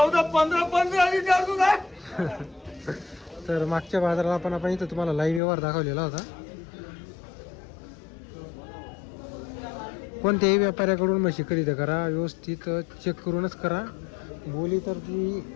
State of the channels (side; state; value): right; drops out; at 5.4 s